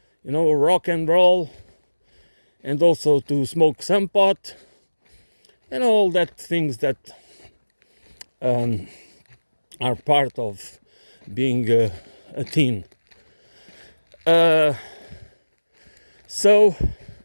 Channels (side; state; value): both; inverted; correlation -1.00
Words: rock and roll, and also to smoke some pot, and all that things that are part of being a teen. So